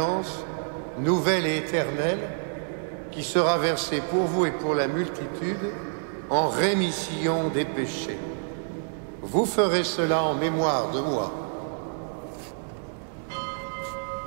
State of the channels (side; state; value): left; silent; digital silence